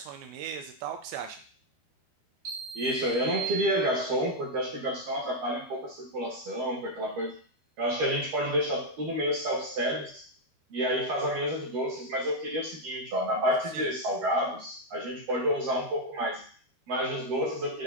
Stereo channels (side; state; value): left; late; 12 ms